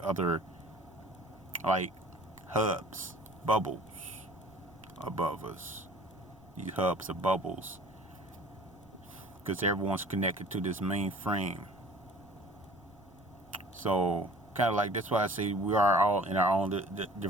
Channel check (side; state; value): right; noise; rumble, 28 dB below the sound